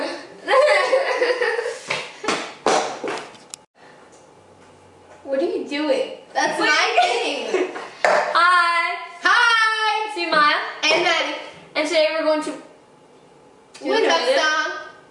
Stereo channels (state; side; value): identical; both; correlation 1.00